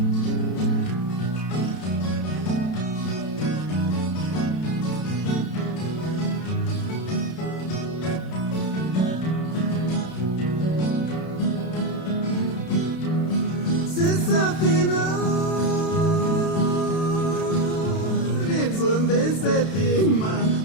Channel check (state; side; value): late; right; 32 ms